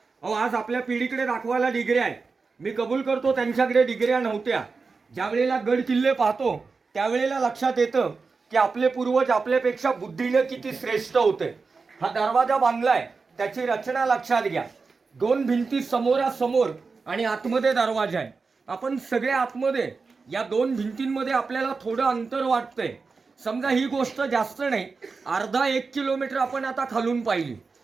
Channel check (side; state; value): left; quieter; 4.5 dB